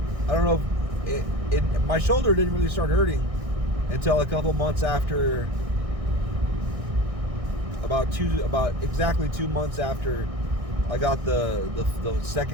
I don't know, my shoulder didn't really start hurting until a couple months after, about exactly 2 months after I got the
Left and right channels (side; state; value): left; late; 1.6 ms